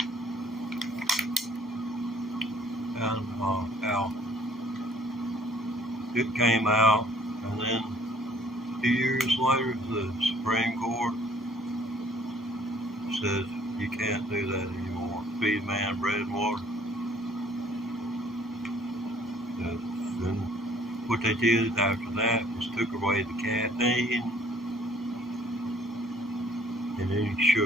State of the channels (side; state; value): both; normal; correlation 0.58